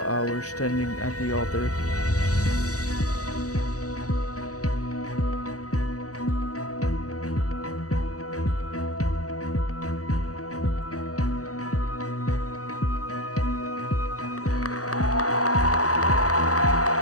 hours standing at the altar.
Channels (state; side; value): late; right; 0.66 ms